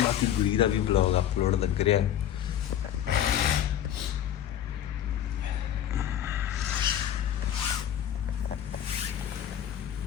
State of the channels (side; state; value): right; quieter; 10.6 dB